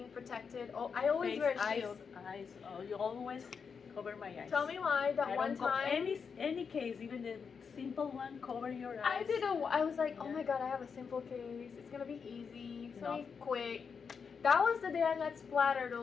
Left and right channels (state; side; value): quieter; right; 6.0 dB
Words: protected. Oh, I always wear a shield. Eyes. Oh, you always cover my eyes. Tell me why. That one time. Any case, even the simple one, cover your eyes. I was like, oh my god, I have a simple case. It's gonna be easy. It's gonna be quick. That was the day I got splattered